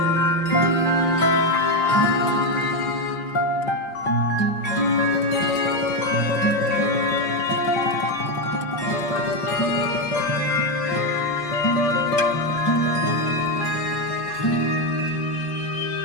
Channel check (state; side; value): late; right; 5.9 ms